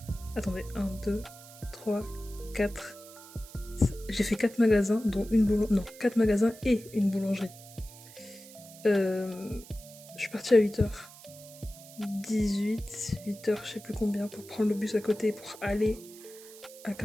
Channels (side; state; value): right; noise; hiss, 19 dB below the sound